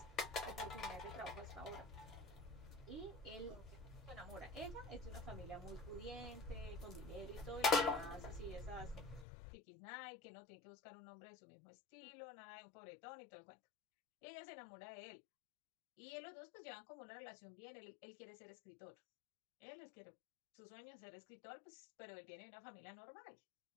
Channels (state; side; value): drops out; right; at 9.2 s